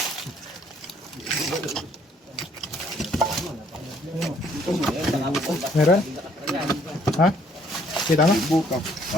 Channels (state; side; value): normal; both; correlation 0.64